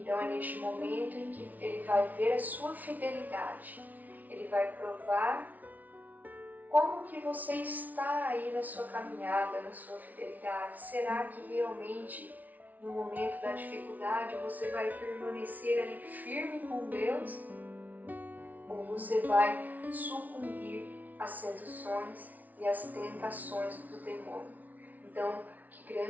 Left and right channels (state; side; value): late; left; 0.076 ms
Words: é neste momento em que Ele vai ver a sua fidelidade, Ele vai provar como que você está aí na sua caminhada, na sua fidelidade. Será que realmente no momento da dificuldade você vai permanecer ali firme com Deus? Ou você vai sucumbir às seduções e às tentações do demônio? Então, que